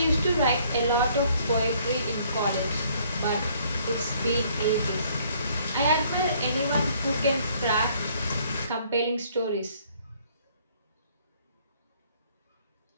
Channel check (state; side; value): inverted; both; correlation -0.62